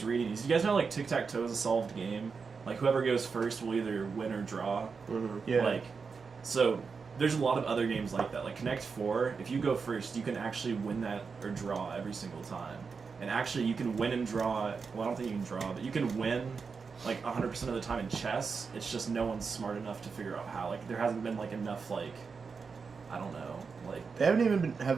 reading, is you guys know like tic-tac-toe is a solved game? Like whoever goes first will either win or draw. Mhm. Yeah. Like, so there's a lot of other games like that. Like Connect 4, if you go first, you can actually win that or draw every single time. And actually, you can win and draw. Well, I don't think you can draw, but you can win like 100% of the time in chess. It's just no one's smart enough to figure out how. Like, there hasn't been like enough like I don't know. Like They haven't even been.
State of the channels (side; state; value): left; quieter; 5.2 dB